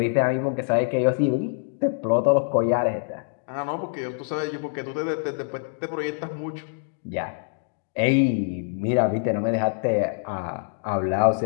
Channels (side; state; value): right; silent; digital silence